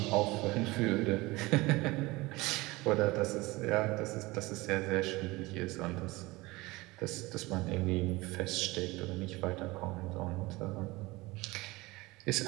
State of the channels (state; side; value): quieter; left; 21.6 dB